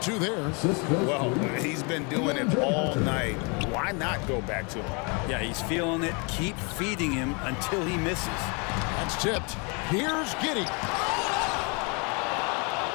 2 there. Well, he's been doing it all night. Why not go back to him? Yeah, he's feeling it. Keep feeding him until he misses. That's tipped. Here's Giddey.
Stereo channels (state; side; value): quieter; right; 32.8 dB